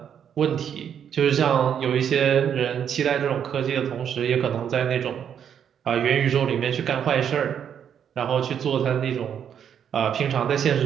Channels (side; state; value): left; quieter; 8.5 dB